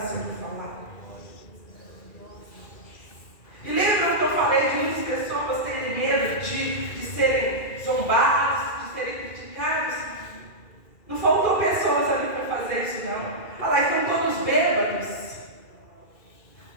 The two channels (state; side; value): late; right; 2.4 ms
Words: sendo falado. E lembram que eu falei de muitas pessoas terem medo de serem zombadas, de serem criticadas? Não faltou pessoas ali para fazer isso, não. Olha lá, estão todos bêbados.